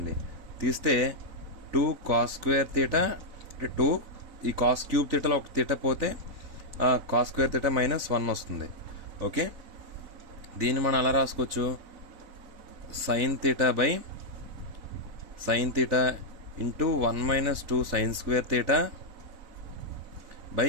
తీస్తే 2 cos square theta అంటే 2 ఈ cos cube thetaలో ఒక theta పోతే cos square theta minus 1 వస్తుంది. ఓకే, దీన్ని మనం అలా రాసుకోవచ్చు, sin theta by sin theta into 1 minus 2 sin square theta by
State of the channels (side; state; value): left; late; 4.0 ms